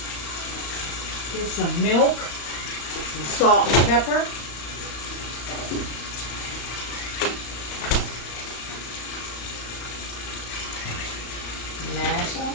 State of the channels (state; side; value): late; right; 35 ms